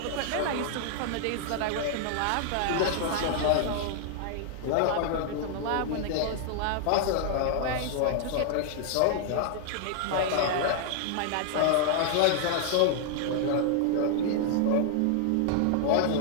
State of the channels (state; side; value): different; both; correlation -0.01